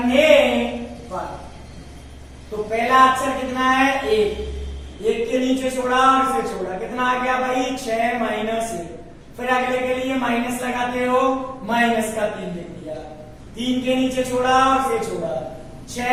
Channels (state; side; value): identical; both; correlation 1.00